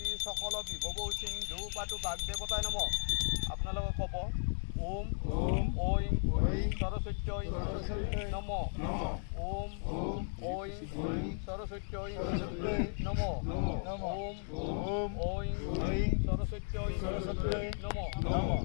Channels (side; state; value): right; silent; digital silence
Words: সকল বিভব সিন্ধু পাতু বাগদেৱতাই নম আপোনালোকে ক'ব ওম ঐং সৰস্বত্যৈ নম ওম ঐং সৰস্বত্যৈ নম ওম ঐং সৰস্বত্যৈ নম